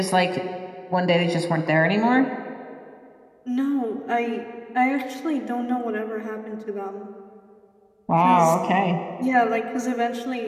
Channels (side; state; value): both; identical; correlation 1.00